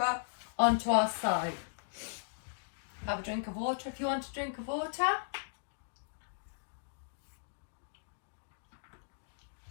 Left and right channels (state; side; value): silent; right; digital silence